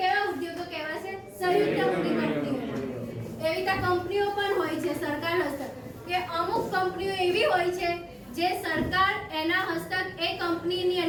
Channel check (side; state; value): both; identical; correlation 1.00